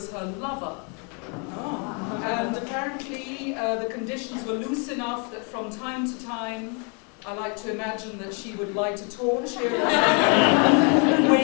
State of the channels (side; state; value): right; quieter; 36.3 dB